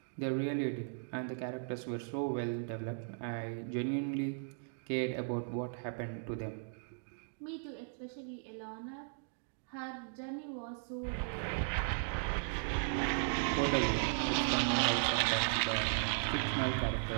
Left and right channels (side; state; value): left; silent; digital silence